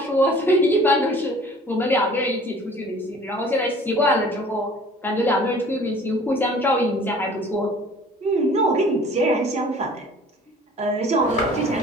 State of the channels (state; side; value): normal; both; correlation 0.50